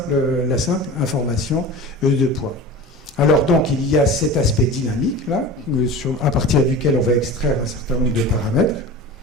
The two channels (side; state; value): both; normal; correlation 0.34